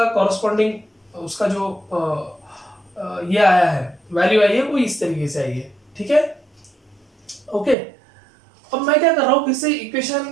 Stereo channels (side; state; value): left; drops out; at 7.8 s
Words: corresponding उसका जो ये आया है, वैल्यू आई है, वो इस तरीके से आई है. ठीक है, ओके. अब मैं क्या कर रहा हूँ, फिर से इक्वेशन